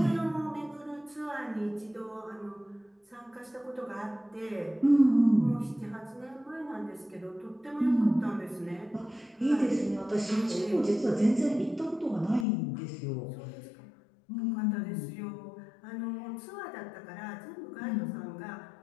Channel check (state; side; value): drops out; right; at 12.5 s